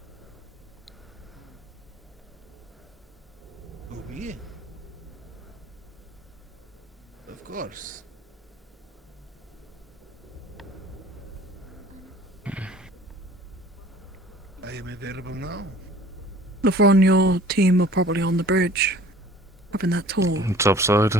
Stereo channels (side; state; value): both; normal; correlation 0.49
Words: Oui. Of course. I am available now. Lavron, your team are probably on the bridge, having that talk. Top side.